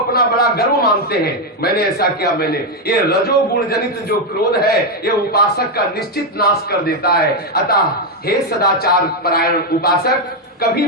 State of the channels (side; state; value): both; normal; correlation 0.04